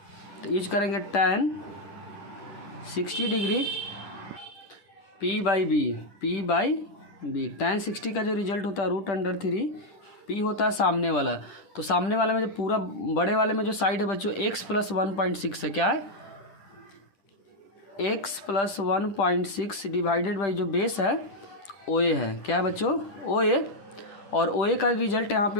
तो यूज करेंगे tan 60 डिग्री P/B। tan 60 का जो रिजल्ट होता है √3, P होता है सामने वाला। तो सामने वाले में जो पूरा बड़े वाले में जो साइड है बच्चों x + 1.6 है, क्या है x + 1.6 डिवाइडेड बाई जो बेस है OA है, क्या है बच्चों OA। और OA का रिजल्ट यहाँ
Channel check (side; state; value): right; late; 10 ms